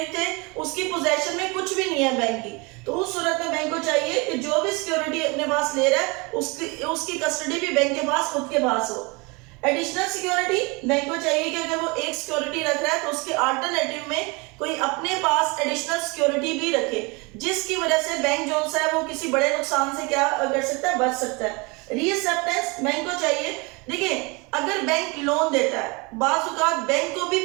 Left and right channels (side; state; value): left; quieter; 27.9 dB